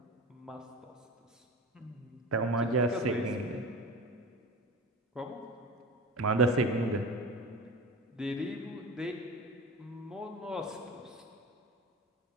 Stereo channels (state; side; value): normal; both; correlation 0.32